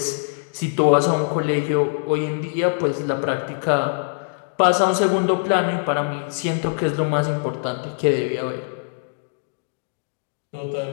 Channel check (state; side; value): silent; right; digital silence